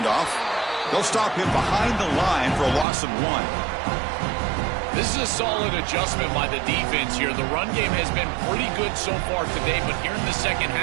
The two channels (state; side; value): drops out; left; at 2.9 s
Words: They'll stop him behind the line for a loss of 1. This is a solid adjustment by the defense here. The run game has been pretty good so far today, but here in the second